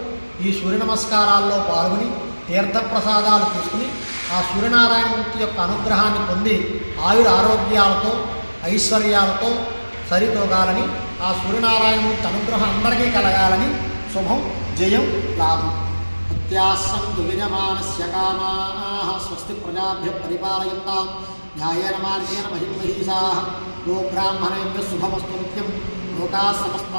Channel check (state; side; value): inverted; both; correlation -1.00